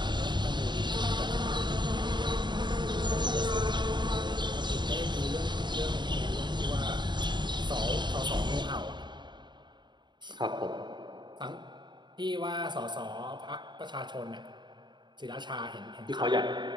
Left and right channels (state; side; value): late; left; 0.22 ms